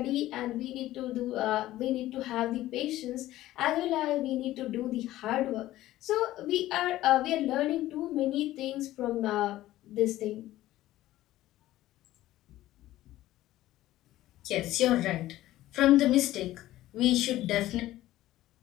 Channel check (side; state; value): right; quieter; 15.2 dB